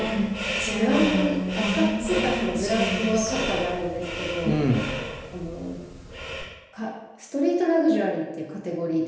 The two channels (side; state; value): both; identical; correlation 1.00